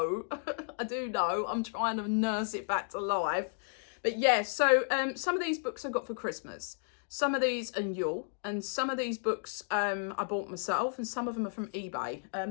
I do know. I'm trying to nurse it back to life. But yeah, so some of these books I got for Christmas. Some of these are Yule, and some of these books I bought myself, and some of them are from eBay.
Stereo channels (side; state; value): right; silent; digital silence